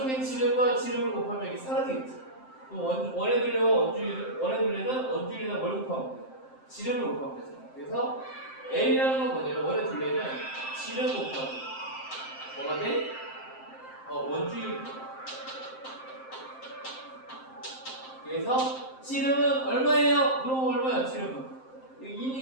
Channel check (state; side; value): late; right; 7.6 ms